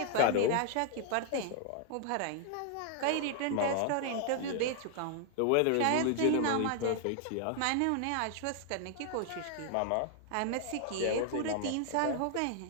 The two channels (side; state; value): both; different; correlation 0.00